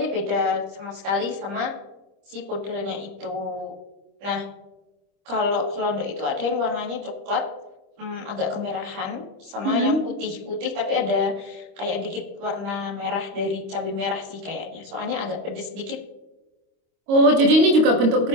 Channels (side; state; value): left; late; 26 ms